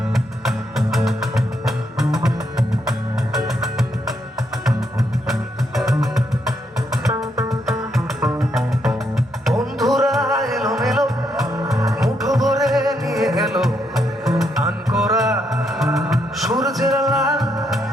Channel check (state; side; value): normal; both; correlation 0.77